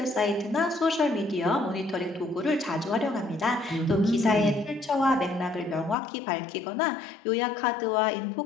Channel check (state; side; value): drops out; right; at 6.0 s